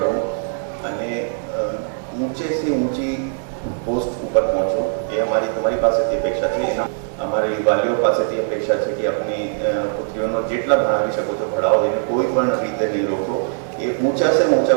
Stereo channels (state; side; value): silent; left; digital silence